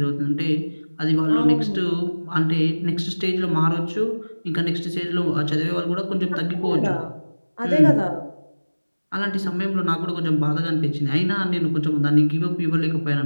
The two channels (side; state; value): both; inverted; correlation -1.00